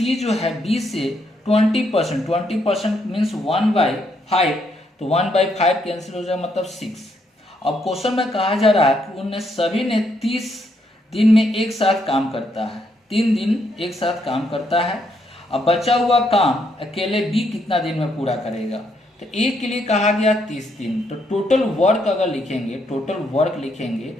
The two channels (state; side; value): normal; both; correlation 0.75